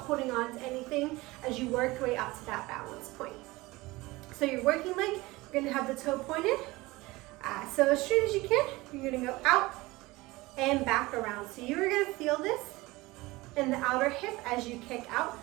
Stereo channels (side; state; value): left; quieter; 21.0 dB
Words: on to anything as you work your way up to that balance point. So your working leg, you're going to have the toe pointed. So as straight as you can, you're going to go out and back around. So you're going to feel this in the outer hip as you kick out,